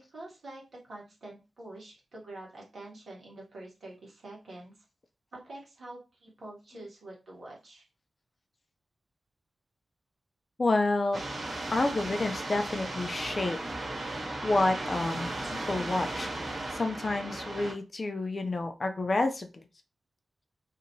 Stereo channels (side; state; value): both; normal; correlation 0.94